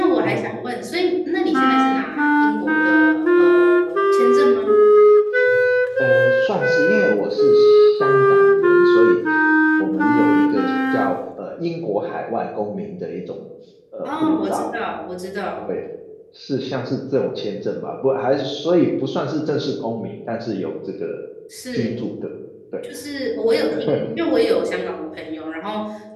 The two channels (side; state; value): both; identical; correlation 1.00